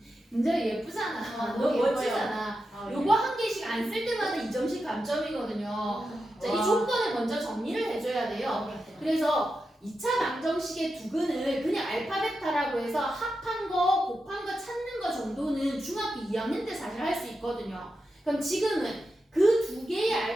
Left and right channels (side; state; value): both; normal; correlation 0.89